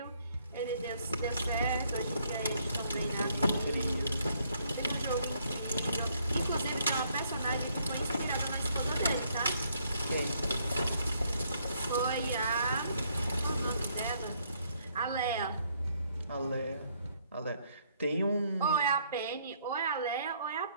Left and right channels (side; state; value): both; inverted; correlation -0.69